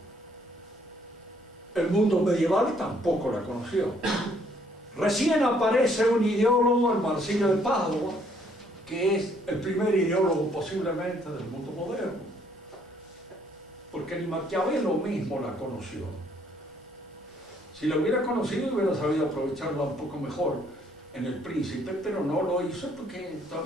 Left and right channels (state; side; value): normal; both; correlation 0.66